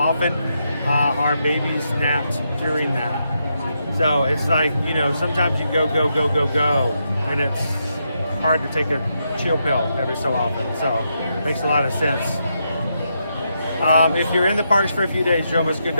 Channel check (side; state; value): both; inverted; correlation -0.82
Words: our babies napped during that. So it's like, you know, sometimes you go, and it's hard to take a chill pill every so often. So it makes a lot of sense. If you're in the parks for a few days, Jomas Good